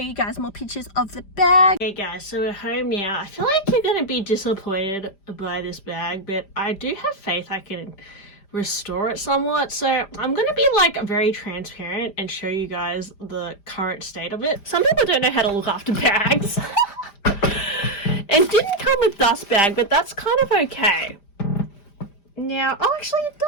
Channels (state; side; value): late; right; 5.0 ms